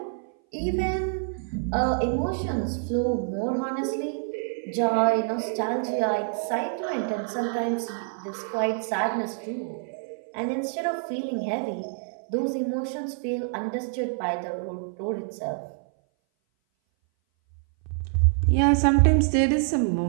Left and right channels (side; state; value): left; silent; 58 dB below the other